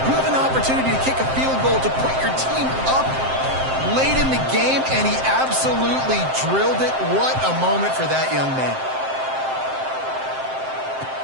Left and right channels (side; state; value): left; late; 7.7 ms